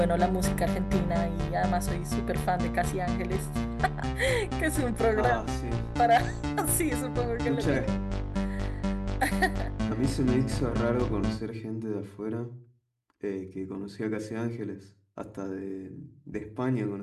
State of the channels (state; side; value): identical; both; correlation 1.00